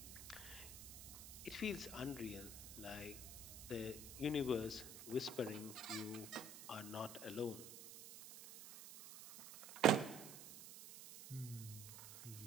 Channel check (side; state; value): right; noise; hiss, 12 dB below the sound